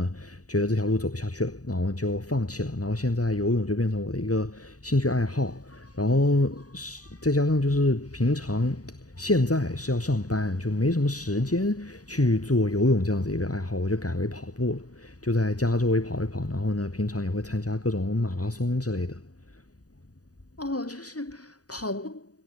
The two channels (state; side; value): late; right; 0.67 ms